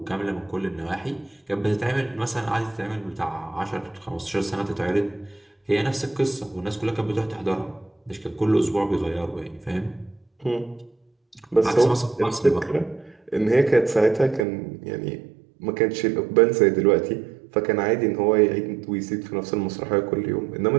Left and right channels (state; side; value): drops out; left; at 14.4 s